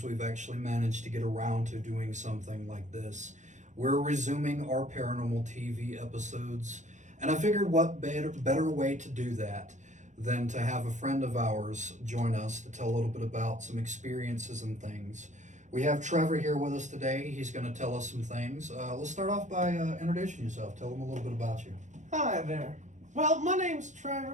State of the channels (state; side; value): late; left; 0.35 ms